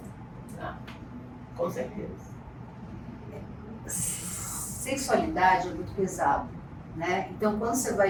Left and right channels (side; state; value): both; identical; correlation 1.00